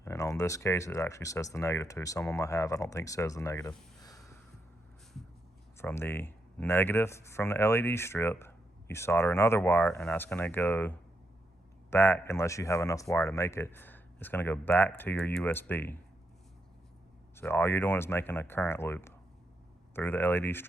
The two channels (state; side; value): normal; both; correlation 0.82